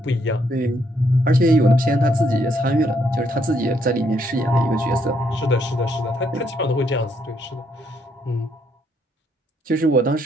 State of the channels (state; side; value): normal; both; correlation 0.72